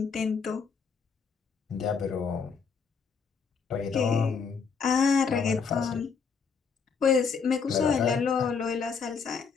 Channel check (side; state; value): right; quieter; 5.8 dB